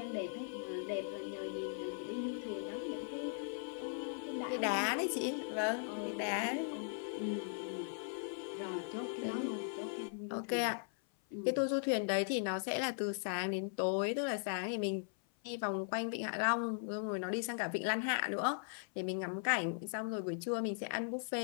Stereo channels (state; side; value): silent; right; 52 dB below the other